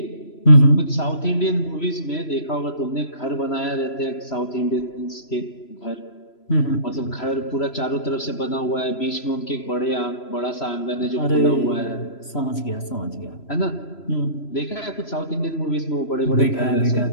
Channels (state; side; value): late; right; 3.0 ms